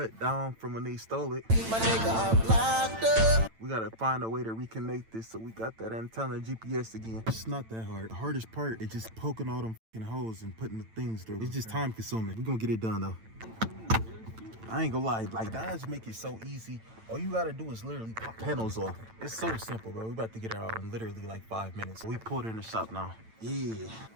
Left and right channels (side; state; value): left; late; 9.0 ms